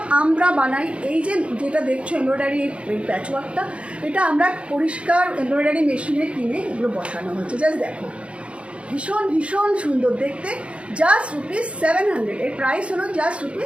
আমরা বানাই। এই যে যেটা দেখছো এমব্রয়ডারি এই প্যাচওয়ার্কটা, এটা আমরা পরিষ্কার এমব্রয়ডারি মেশিনে কিনে এগুলো বসানো হচ্ছে। জাস্ট দেখো ভীষণ ভীষণ সুন্দর দেখতে। জাস্ট ₹700, এর প্রাইস হলো জাস্ট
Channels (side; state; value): left; late; 0.060 ms